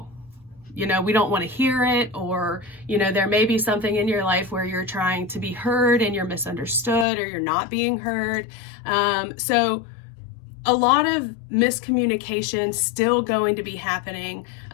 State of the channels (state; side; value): drops out; right; at 7.1 s